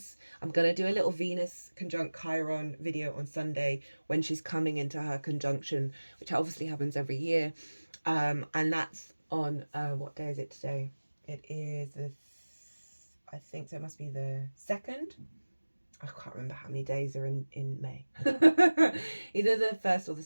I'm going to do a little Venus conjunct Chiron video on Sunday when she's coming into her conjunction, which obviously happens every year. And that's on, what day is it today? It is, I think so, it must be the 2nd. I can't remember how many days are in May. Either the 1st or the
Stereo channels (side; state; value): both; inverted; correlation -1.00